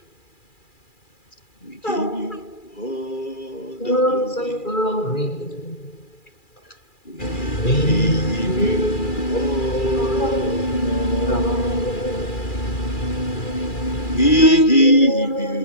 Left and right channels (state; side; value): late; right; 2.4 ms